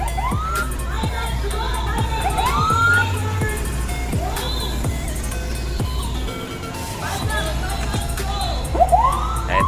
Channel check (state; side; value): identical; both; correlation 1.00